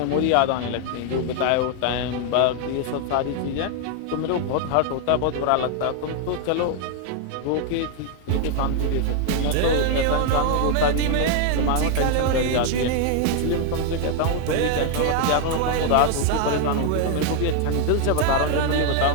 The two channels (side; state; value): both; different; correlation 0.00